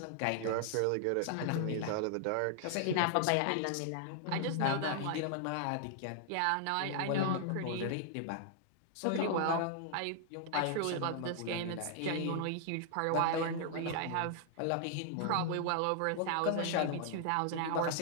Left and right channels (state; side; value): different; both; correlation -0.01